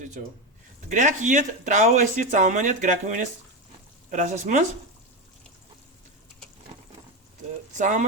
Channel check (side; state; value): both; normal; correlation 0.14